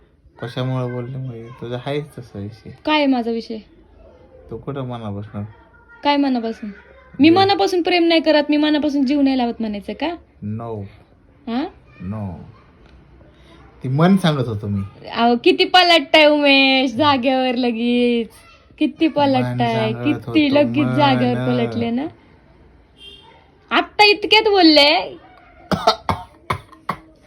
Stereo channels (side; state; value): both; identical; correlation 1.00